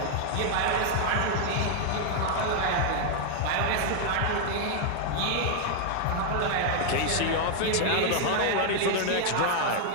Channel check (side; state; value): both; different; correlation 0.00